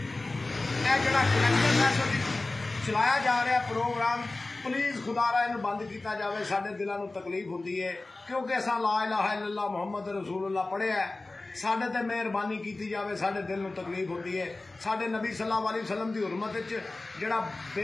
जिहड़ा कलैक्टर फैसला चलाया जा रहा प्रोग्राम, प्लीज़ खुदारा इन्हूं बंद किया जाए। साडे दिलों को तकलीफ होती है क्योंकि असां ला इलाहा इल्लल्लाह मुहम्मद रसूलुल्लाह पढ़िया है। साडे ते मेहरबानी की जाए, साडे दिल में तकलीफ होती है। साडे नबी सल्लल्लाहु अलैहि वसल्लम की हुरमत जिहड़ा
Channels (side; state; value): right; quieter; 3.1 dB